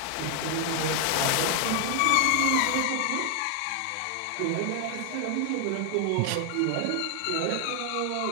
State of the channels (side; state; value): both; different; correlation 0.00